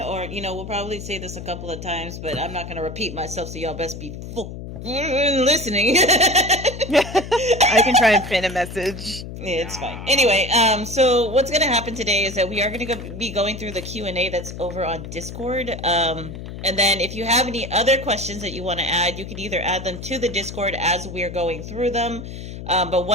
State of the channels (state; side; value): noise; left; hum, 10 dB below the sound